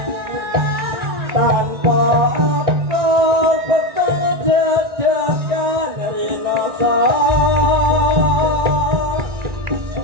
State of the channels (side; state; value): left; late; 1.9 ms